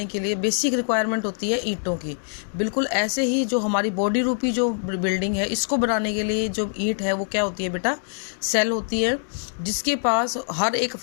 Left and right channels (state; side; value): silent; right; digital silence